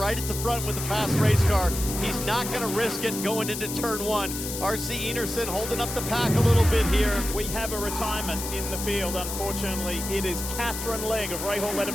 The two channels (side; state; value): left; noise; hiss, 6 dB below the sound